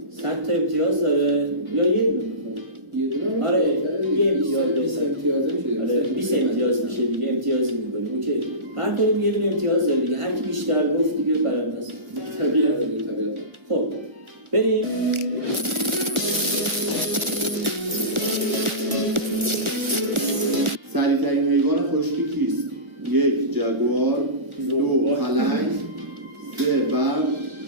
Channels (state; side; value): late; left; 1.4 ms